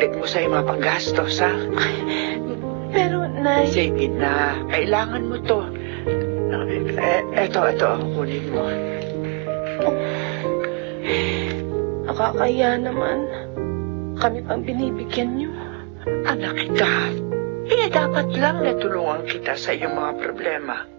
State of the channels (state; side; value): quieter; left; 34.6 dB